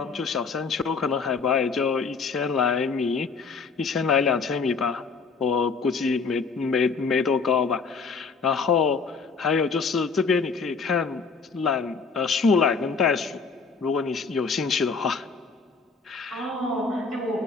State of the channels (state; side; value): quieter; right; 4.9 dB